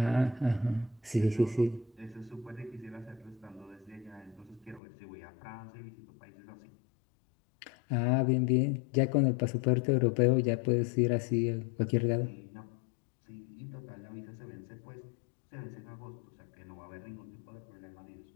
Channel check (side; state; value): right; drops out; at 4.8 s